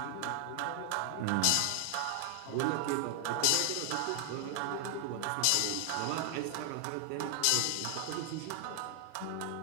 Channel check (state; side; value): different; both; correlation 0.00